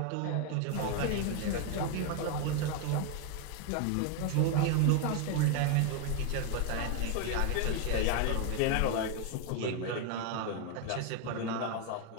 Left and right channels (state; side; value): different; both; correlation 0.01